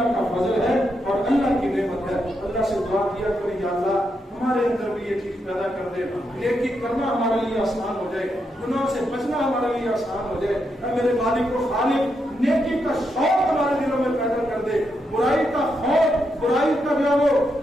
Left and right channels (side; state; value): both; normal; correlation 0.82